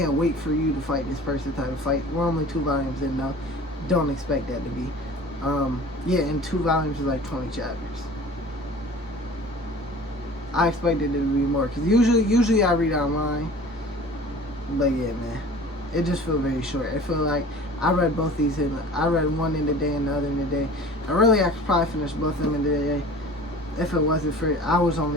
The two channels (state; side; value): normal; both; correlation 0.43